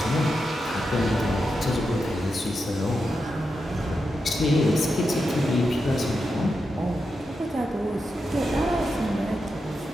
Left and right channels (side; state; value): both; normal; correlation 0.87